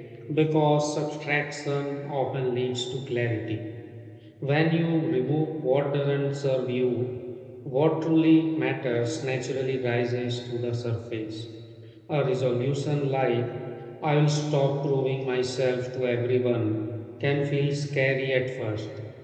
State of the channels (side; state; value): both; identical; correlation 1.00